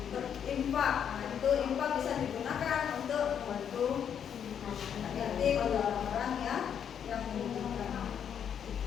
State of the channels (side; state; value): right; quieter; 8.3 dB